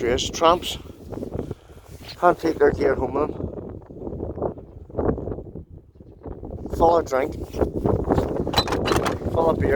Tramps can't take their gear home with them. Full of drink, full of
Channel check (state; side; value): identical; both; correlation 1.00